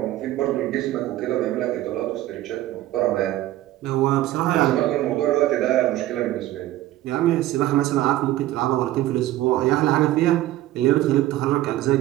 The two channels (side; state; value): left; quieter; 15.1 dB